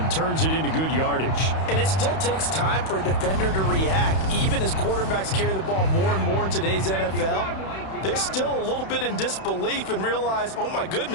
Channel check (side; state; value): right; late; 31 ms